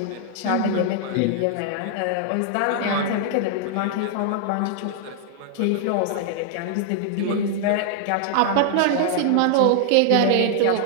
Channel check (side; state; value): both; different; correlation -0.01